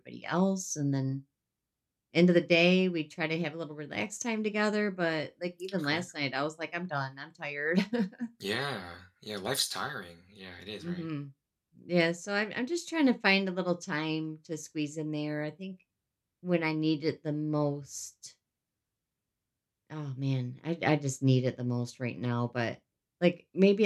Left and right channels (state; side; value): identical; both; correlation 1.00